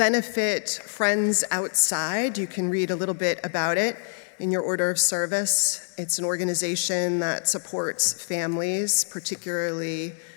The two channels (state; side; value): silent; right; 59 dB below the other